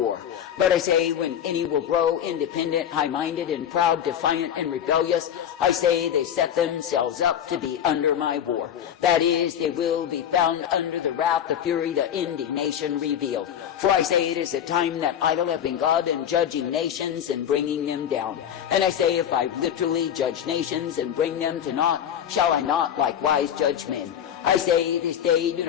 But I say, when any will grow independent, high-minded, and proud, defiant, and rebellious, I say they set themselves up to be under my war. That is, they will be found under the wrath, the fury, the indignation revealed. For I say it is a time that I, the living God, am judging nations and bringing them down. And I say, if I literally judge nations and bring them to naught, shall I not likewise judge men? I say this day, do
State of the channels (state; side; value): quieter; right; 9.4 dB